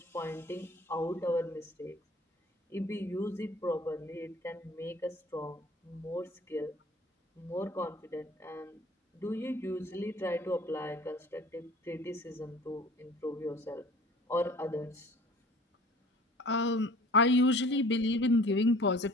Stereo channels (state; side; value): normal; both; correlation 0.48